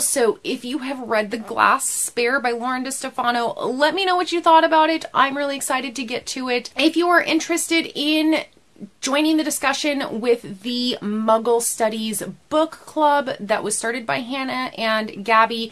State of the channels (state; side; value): identical; both; correlation 1.00